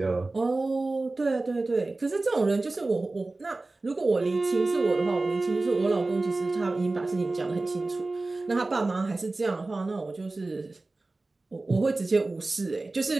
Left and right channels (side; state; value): left; quieter; 3.2 dB